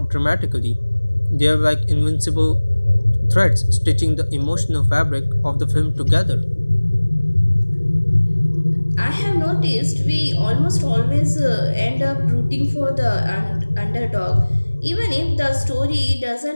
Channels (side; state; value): both; inverted; correlation -1.00